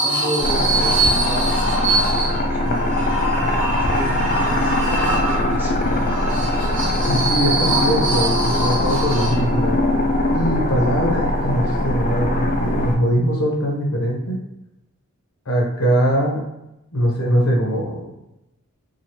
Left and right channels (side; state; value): both; normal; correlation 0.44